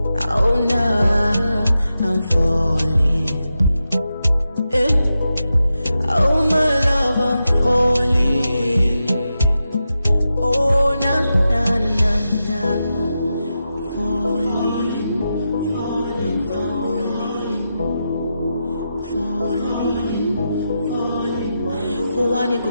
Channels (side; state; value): both; inverted; correlation -0.89